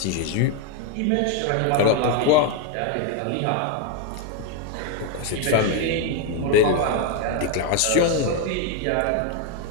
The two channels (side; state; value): both; different; correlation 0.01